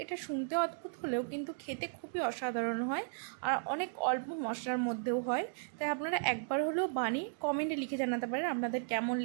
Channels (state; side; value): silent; left; digital silence